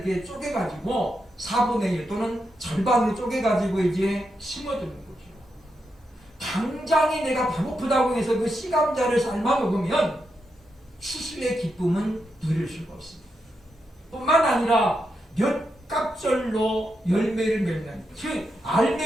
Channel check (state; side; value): normal; both; correlation 0.85